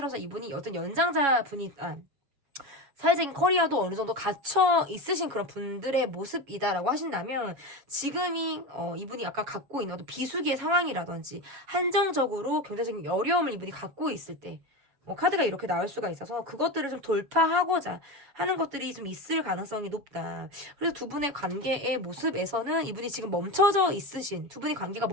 이분이 어떤 연장자 분이 사회적인 커리어도 어느 정도 갖춰 있으신 그런 분들의 모습이다라고 하신다면 지금이 이분이 아까 갖고 있는 어떤 비수기의 상황이라든지 한정적으로 경제적인 어려움을 이분이 갖고 있을 때 카드가 이렇게 나올 수가 있어서 그것들을 좀 돌파하고자 하는 것들이 좀 있을 가능성이 높다. 그래서 두 분의 관계의 모습에서는 이분이 지금 멈춰져 있으신, 두 분의 관계가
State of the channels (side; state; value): left; late; 7.2 ms